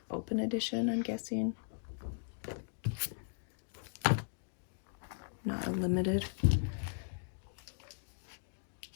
open edition, I'm guessing. Not a limited.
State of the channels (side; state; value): right; silent; digital silence